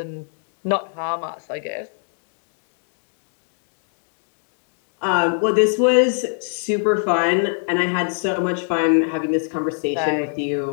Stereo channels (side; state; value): right; silent; 64 dB below the other